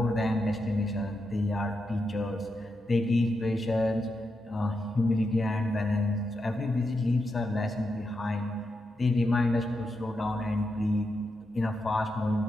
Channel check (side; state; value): both; normal; correlation 0.85